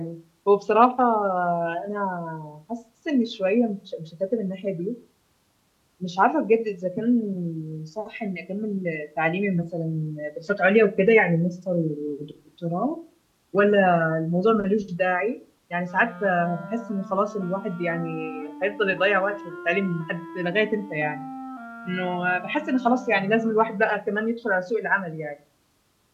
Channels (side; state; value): both; identical; correlation 1.00